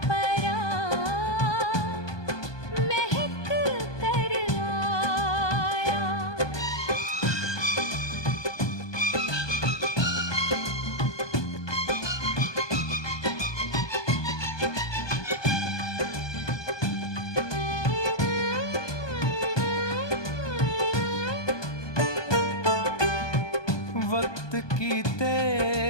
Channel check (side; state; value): right; late; 1.2 ms